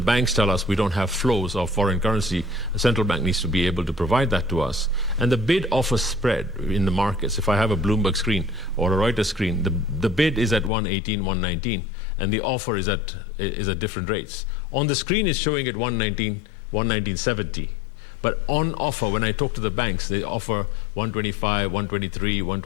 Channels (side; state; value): right; drops out; at 10.7 s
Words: tell us we don't have flows of foreign currency. The central bank needs to be able to provide that to us. And the bid-offer spread in the markets, if I have a Bloomberg screen or a Reuters screen, the bid is at 118, 119, and the offer is at different rates. On the screen it's showing at 119, 119.70. But on offer, when I talk to the banks, they offer 125, 123,